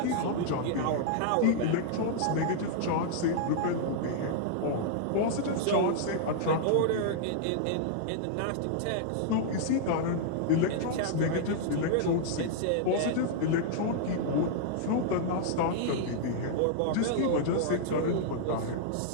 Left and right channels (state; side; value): different; both; correlation -0.01